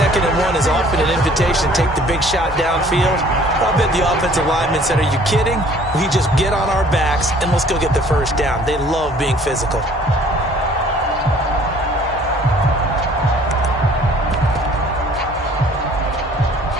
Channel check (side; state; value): both; normal; correlation 0.55